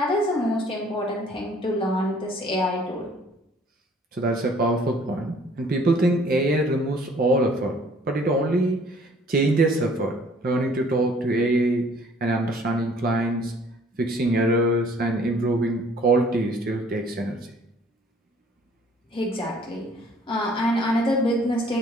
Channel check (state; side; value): normal; both; correlation 0.57